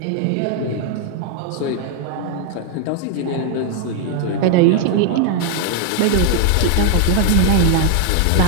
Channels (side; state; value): both; different; correlation 0.00